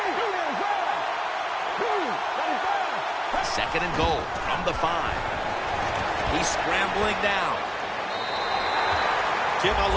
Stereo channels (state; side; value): identical; both; correlation 1.00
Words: Second and goal from the 5. He's scrambling down. Jim, I